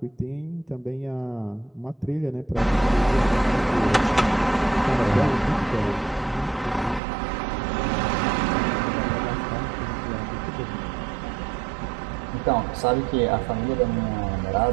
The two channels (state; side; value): drops out; left; at 7.0 s